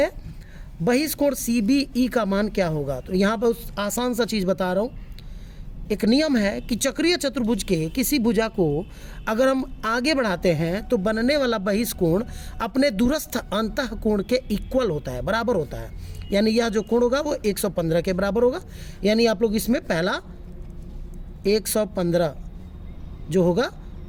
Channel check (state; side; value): identical; both; correlation 1.00